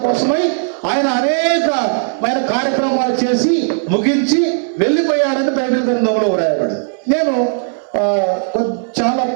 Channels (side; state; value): left; silent; digital silence